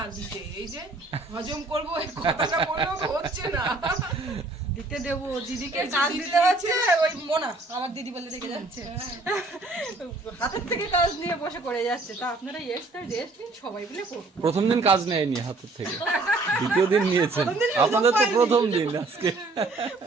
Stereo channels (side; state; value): left; quieter; 3.2 dB